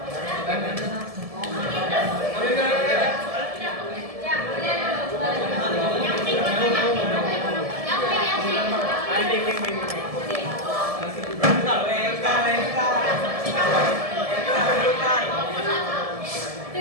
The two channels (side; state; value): left; late; 1.7 ms